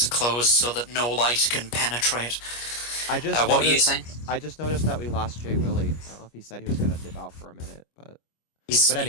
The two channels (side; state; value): right; late; 25 ms